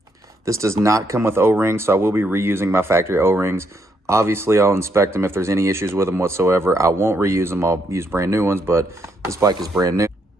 This does not come with O-rings, so I will be reusing my factory O-rings. Obviously, I'll inspect them if there's any issues with them whatsoever. I won't reuse them. I'll use brand new ones, but this bike is brand new.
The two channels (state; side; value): normal; both; correlation 0.75